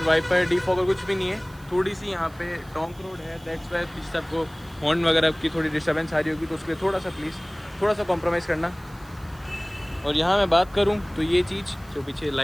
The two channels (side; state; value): right; noise; hiss, 26 dB below the sound